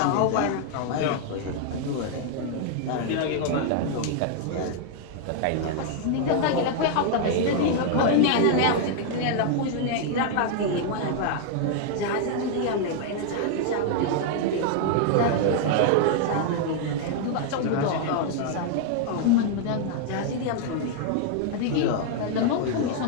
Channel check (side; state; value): both; different; correlation 0.00